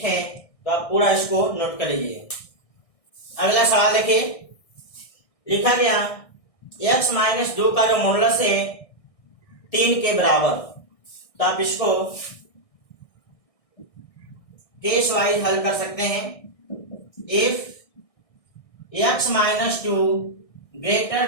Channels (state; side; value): late; right; 1.6 ms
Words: हैं। तो आप पूरा इसको नोट कर लीजिए। अगला सवाल देखिए, लिखा गया x - 2 का जो मॉडुलस है 3 के बराबर। तो आप इसको केस वाइज हल कर सकते हैं। If x - 2